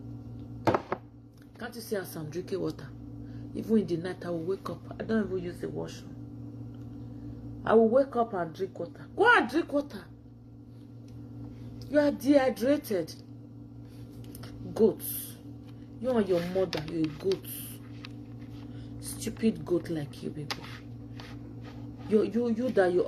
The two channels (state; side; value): identical; both; correlation 1.00